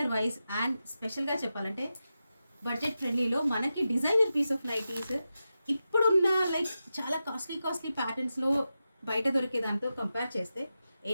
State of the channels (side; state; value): both; inverted; correlation -0.91